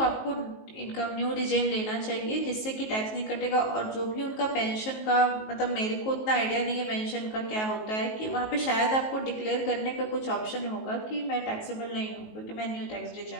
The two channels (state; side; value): late; right; 19 ms